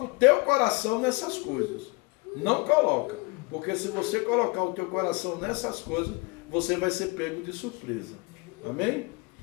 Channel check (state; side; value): quieter; right; 27.1 dB